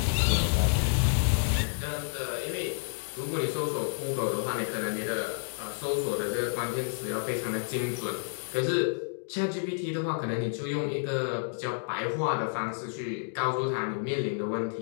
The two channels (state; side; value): silent; right; digital silence